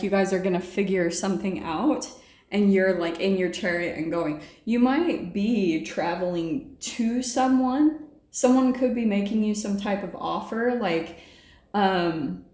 you guys are gonna figure something out, and you're like in your chariot and going. You might be traveling to someone. Someone could be making you some type of offer, that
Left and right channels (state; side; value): identical; both; correlation 1.00